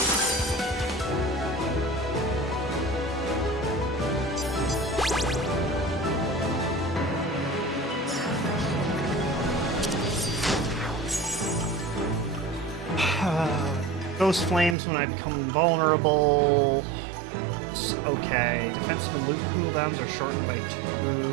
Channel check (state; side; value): drops out; left; at 14.8 s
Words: Ghost flames when I become invulnerable. Okay, defensive and loot cooldowns are shortened by 2.